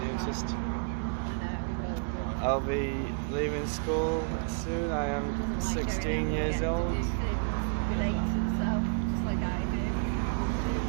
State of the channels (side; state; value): left; silent; 57 dB below the other